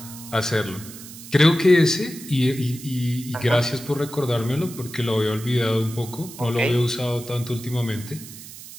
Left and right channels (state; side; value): noise; right; hiss, 15 dB below the sound